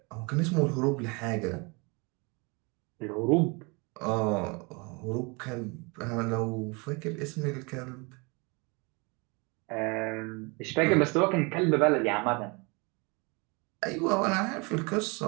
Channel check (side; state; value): left; quieter; 29.4 dB